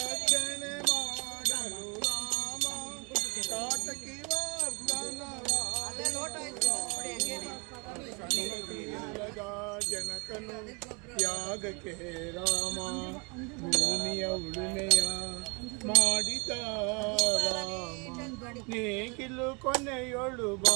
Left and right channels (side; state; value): left; quieter; 31.7 dB